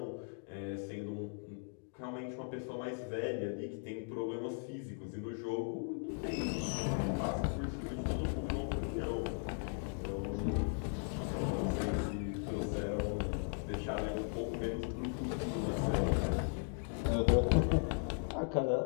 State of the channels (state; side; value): silent; right; 53 dB below the other